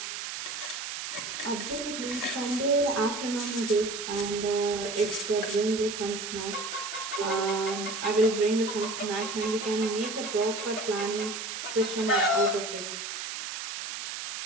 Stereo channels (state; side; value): noise; right; hiss, 6 dB below the sound